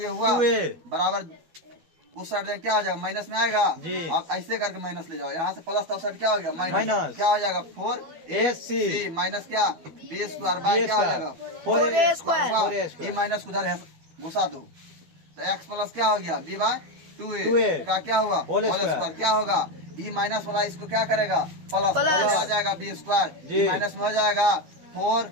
हुआ 2a बराबर उस साइड जाएंगे क्या हो जाएगा माइनस में आएगा जी। अब ऐसे करके माइनस ले जाओ, यहाँ से प्लस था उस साइड क्या हो गया माइनस, माइनस। क्या हो जाएगा 4ac माइनस क्या b स्क्वायर बाय क्या हो जाएगा 4a स्क्वायर। ये माइनस उधर घुसा दो, तो x प्लस क्या हो गया b बाय 2a 2a का क्या हुआ होल होल स्क्वायर, क्या होगा ई माइनस वाला इसको क्या करेगा प्लस प्लस। हो जाएगा बी स्क्वायर, जी। माइनस में हो जाएगा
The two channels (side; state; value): left; late; 12 ms